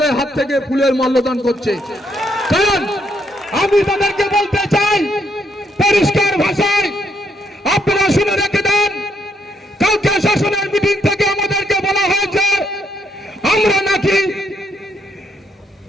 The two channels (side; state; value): both; normal; correlation 0.74